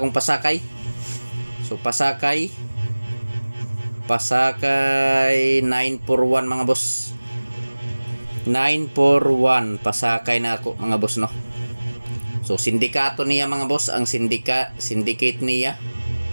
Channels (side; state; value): both; inverted; correlation -1.00